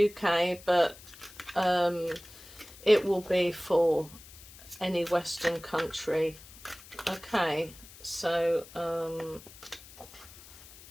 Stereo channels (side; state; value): left; noise; hiss, 19 dB below the sound